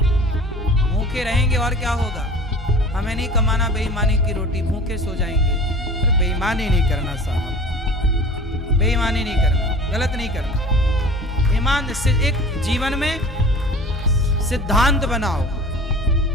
भूखे रहेंगे और क्या होगा, हमें नहीं कमाना बेईमानी की रोटी, भूखे सो जाएंगे। पर बेईमानी नहीं करना साहब, बेईमानी नहीं करना, गलत नहीं करना। ईमान से एक जीवन में सिद्धांत बनाओ।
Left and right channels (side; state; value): both; normal; correlation 0.41